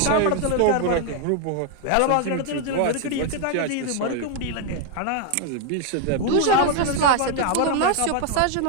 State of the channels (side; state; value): both; different; correlation 0.00